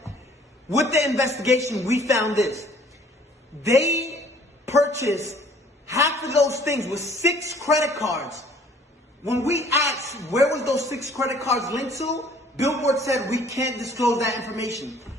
With the investigation, we found this. They purchased half of those things with 6 credit cards. When we asked where was those 6 credit cards linked to, Billboard said we can't disclose that information.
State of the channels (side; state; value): both; normal; correlation 0.56